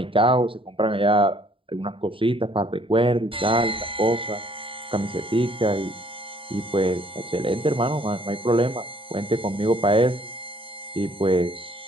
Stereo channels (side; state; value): left; late; 0.25 ms